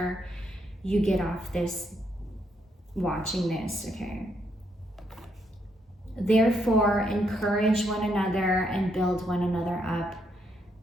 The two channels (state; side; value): normal; both; correlation 0.76